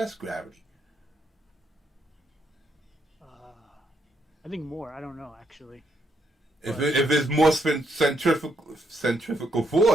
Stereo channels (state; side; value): normal; both; correlation 0.76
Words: gravity? I think more. I don't know, actually. If it's more centrifugal